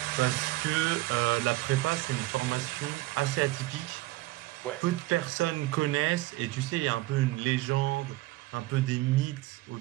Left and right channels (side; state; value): left; quieter; 18.7 dB